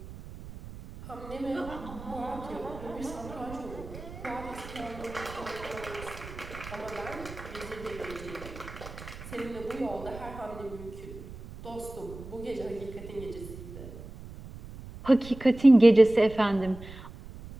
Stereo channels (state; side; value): noise; right; rumble, 14 dB below the sound